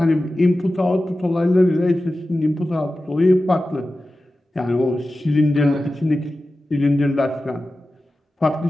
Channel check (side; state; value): both; normal; correlation 0.94